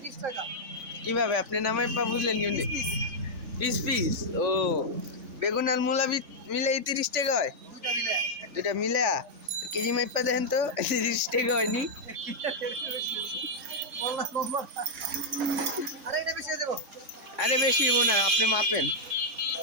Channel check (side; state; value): left; late; 3.4 ms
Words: কিভাবে আপনি নামাই পা বুঝলেন কেমনি? Piece piece. ও, বেগুন আর মূলা মিলে 30 টাকা হয়? দুটা মিলে কেজি মাইপা দেখেন তো, 30 টাকা হয়নি? আরে বেশি হবো না, আপনি মাপেন।